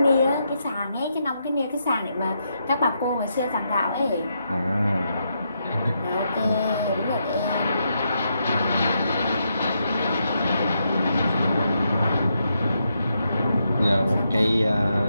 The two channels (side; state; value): both; inverted; correlation -0.81